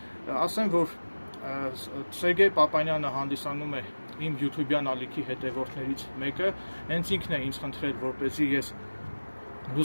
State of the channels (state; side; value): inverted; both; correlation -1.00